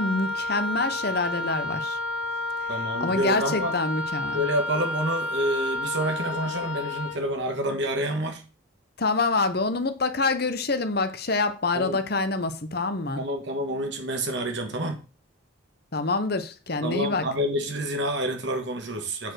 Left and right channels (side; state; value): both; normal; correlation 0.06